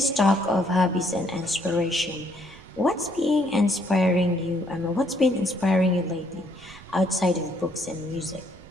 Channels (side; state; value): right; noise; rumble, 22 dB below the sound